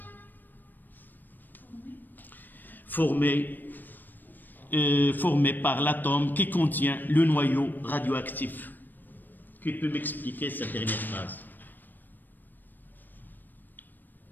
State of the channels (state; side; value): late; right; 0.090 ms